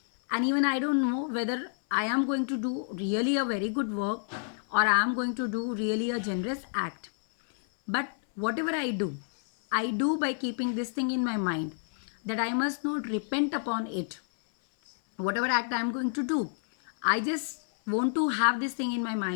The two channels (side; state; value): right; silent; 58 dB below the other